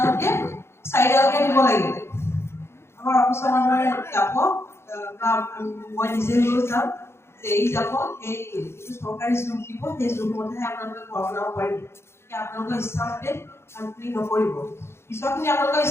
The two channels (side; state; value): right; late; 0.12 ms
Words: চাইডলৈকে দিব লাগিব আমাৰ অফিচৰ মানুহে যাব বা মই নিজে লৈ যাম যে এই যাব এই চৰকাৰী জোখ দিব সেই জোখমতেহে আপোনালোকে ঘৰ বনাব পাৰিব এতিয়া আপোনালোকৰ ইচ্ছামতে কামখিনি নকৰিব পিছৰখিনি আপোনালোকৰ